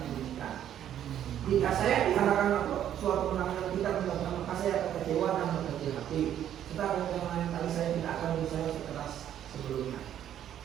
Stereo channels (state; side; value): quieter; left; 10.6 dB